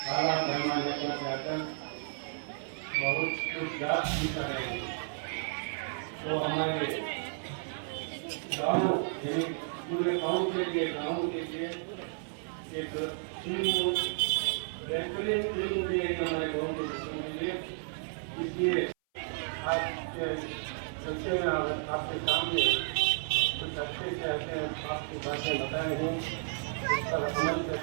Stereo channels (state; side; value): silent; left; 56 dB below the other